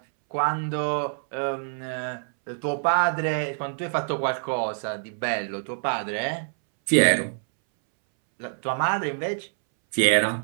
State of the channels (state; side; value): silent; left; 61 dB below the other